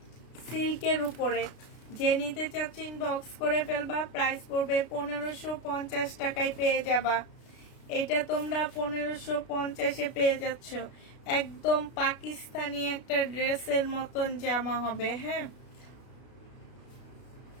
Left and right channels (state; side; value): late; right; 33 ms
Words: সিল্কের উপরে। যে নিতে চাচ্ছ ইনবক্স করে ফেলবা, প্রাইস পড়বে 1550 টাকায় পেয়ে যাবা। এটা তোমরা 1550-এ পেয়ে যাচ্ছ। একদম পাকিস্তানি একটা ড্রেসের মতন জামা হবে। হ্যাঁ,